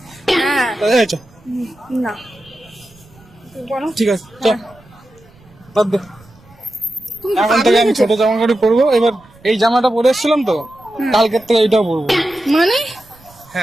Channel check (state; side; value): noise; right; rumble, 27 dB below the sound